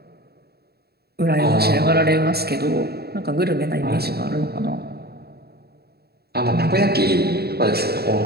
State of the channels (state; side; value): late; left; 0.46 ms